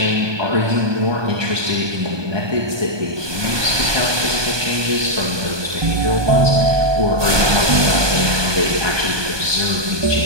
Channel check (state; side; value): late; left; 1.2 ms